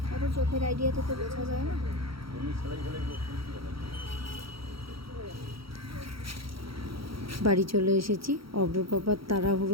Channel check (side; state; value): left; late; 0.75 ms